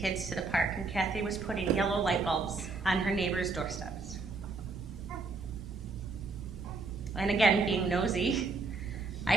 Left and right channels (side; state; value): left; quieter; 3.9 dB